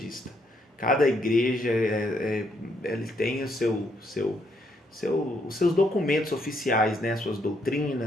Cada igreja ele tem os seus documentos oficiais, né, suas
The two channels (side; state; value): both; normal; correlation 0.73